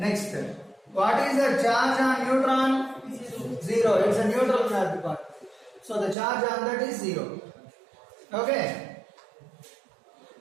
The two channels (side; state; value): left; drops out; at 6.2 s